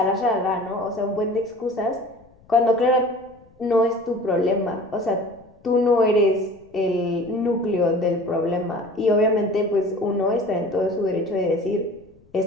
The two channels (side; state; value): left; noise; rumble, 30 dB below the sound